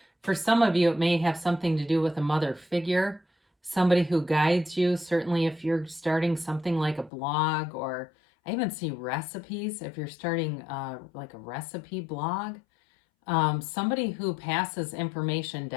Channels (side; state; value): right; drops out; at 7.1 s